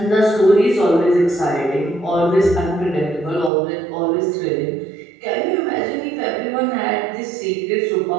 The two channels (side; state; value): left; drops out; at 3.5 s